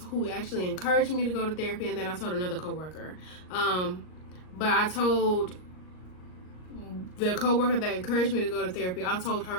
who actually encouraged me to go to therapy, and then I told another coworker. But I told the coworker that encouraged me to go to therapy, I told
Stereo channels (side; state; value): right; late; 38 ms